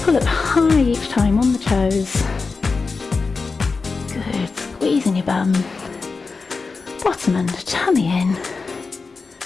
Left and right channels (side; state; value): right; quieter; 4.4 dB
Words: up high each time on the toes. Good. Squeezing your bum. Bottom under, tummy in.